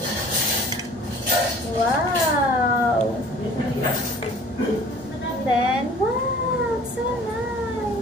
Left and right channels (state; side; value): normal; both; correlation 0.49